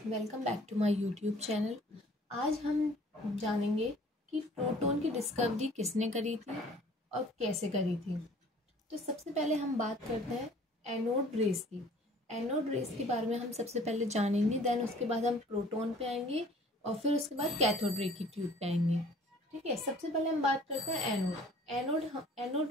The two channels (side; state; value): both; normal; correlation 0.52